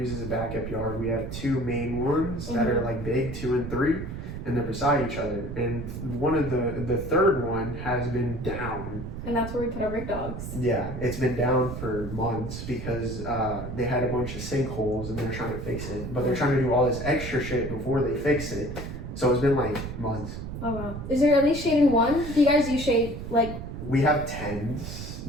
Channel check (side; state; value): right; noise; rumble, 7 dB below the sound